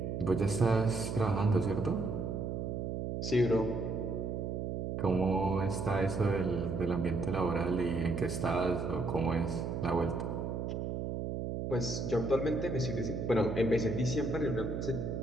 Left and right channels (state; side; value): noise; right; hum, 3 dB below the sound